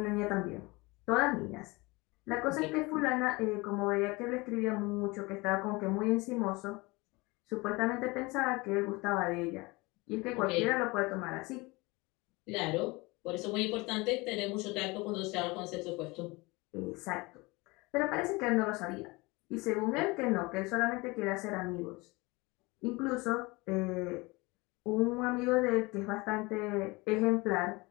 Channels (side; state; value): right; quieter; 24.2 dB